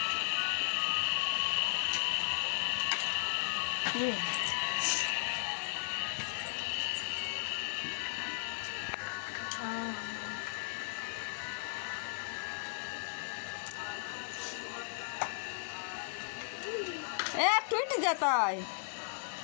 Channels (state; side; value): silent; right; digital silence